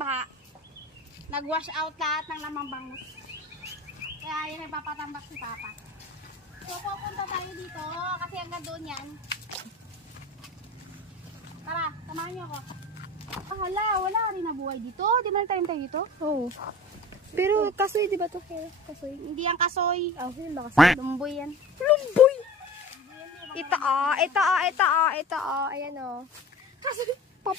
Nag-wash out lahat ng lamang bangus. Kaya yan, nagpapatambak si Papa. So pupunta tayo dito kasi hanggang doon yan. Tara, samahan niyo ako. Wala rin nabuhay dito. Di ba tayo dito? Oo. Pero kasoy, di ba to? Kasoy. Hindi yan kasoy. Yun ba kasoy? Lumboy yan. Lumboy! Ito. Ayan o. Kasoy,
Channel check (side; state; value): both; normal; correlation 0.37